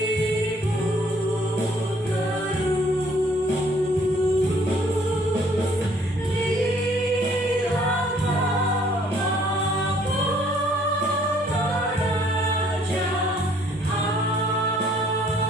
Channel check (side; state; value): both; normal; correlation 0.61